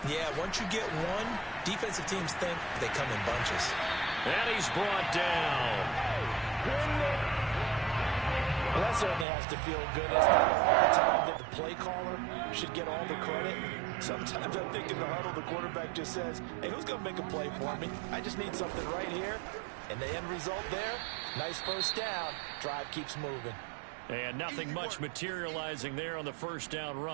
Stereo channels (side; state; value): left; drops out; at 9.2 s